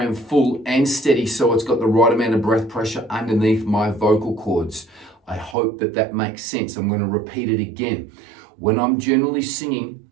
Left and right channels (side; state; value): left; drops out; at 5.6 s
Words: full and steady so it's got the right amount of breath pressure underneath my vocal cords. I hope that that makes sense. I'm going to repeat it again. When I'm generally singing,